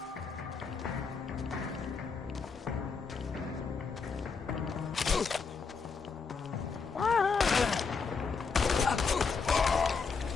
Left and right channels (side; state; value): right; quieter; 5.1 dB